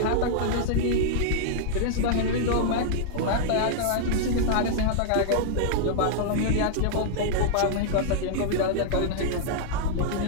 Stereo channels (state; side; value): different; both; correlation -0.01